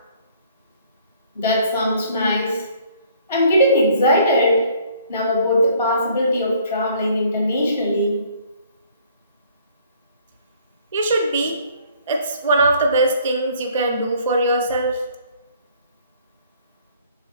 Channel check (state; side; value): inverted; both; correlation -0.59